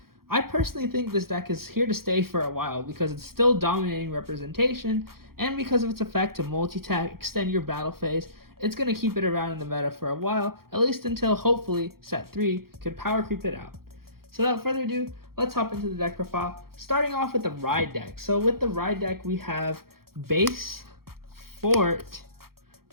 I personally think this deck is here to stay for a while because it's still dominating representation, and because of its effect to multi-tag, extend your battle phase. It's going to keep it around in the meta for a while, at least until hopefully set 3 could power creep it out. So without further ado, let's hop into the deck profile, starting off with the Ride deck. So with the Ride deck, we have Base, Fort,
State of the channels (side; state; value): left; late; 0.94 ms